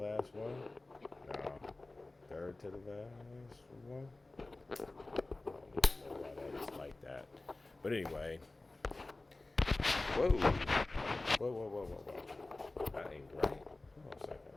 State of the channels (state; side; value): quieter; right; 3.0 dB